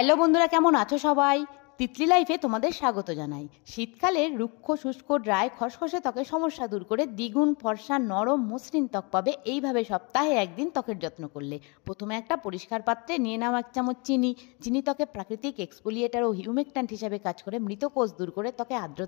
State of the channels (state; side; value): quieter; right; 30.7 dB